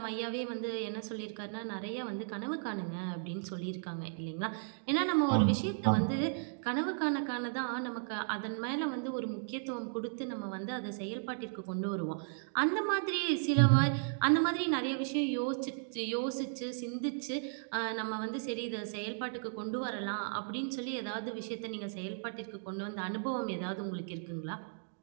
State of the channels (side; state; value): left; silent; digital silence